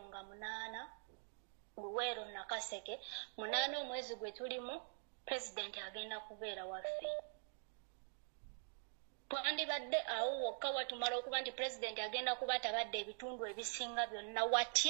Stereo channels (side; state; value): left; silent; digital silence